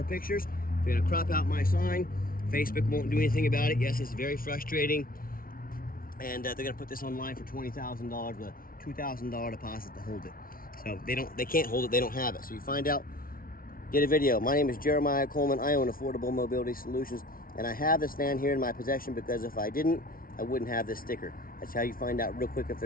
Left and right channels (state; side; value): late; right; 0.42 ms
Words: pictures. They're going to crop out my sign. Facebook won't do anything about it. Yes, it's very frustrating. And they're going to put this online for $20,000 with a $2,000 deposit to hold it. So they can't hold it. They don't have it. So you find out, get a video. My name is Jeremiah Coleman. I own Affordable Mobility Solutions, and I have this van here in my possession because if I didn't, I wouldn't have this sticker. That's how you find out real quick if